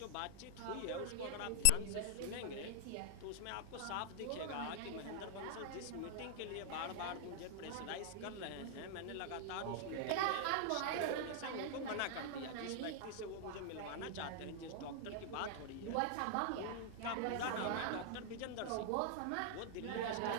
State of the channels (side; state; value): both; different; correlation 0.00